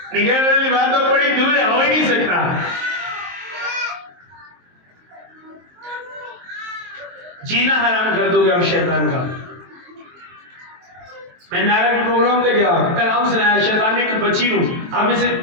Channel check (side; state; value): left; late; 23 ms